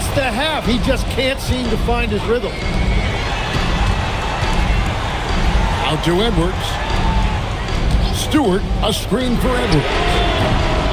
the half, he just can't seem to find his rhythm. Out to Edwards. Stewart, a screen for Edwards.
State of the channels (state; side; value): identical; both; correlation 1.00